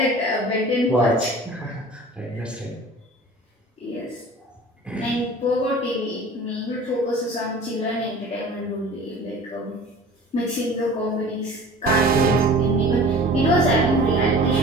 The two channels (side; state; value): both; normal; correlation 0.42